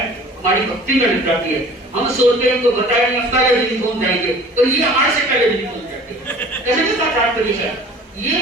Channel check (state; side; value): normal; both; correlation 0.47